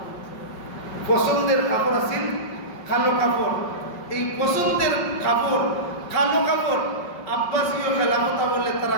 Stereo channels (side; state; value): right; late; 5.3 ms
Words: পছন্দের কাপড় আছিল কালো কাপড়। এই পছন্দের কাপড় কালো কাপড় আব্বাসীয় খেলাফত বলে তারা